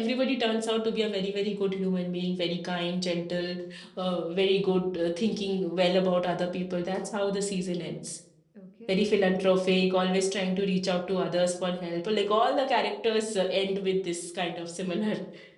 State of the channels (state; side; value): identical; both; correlation 1.00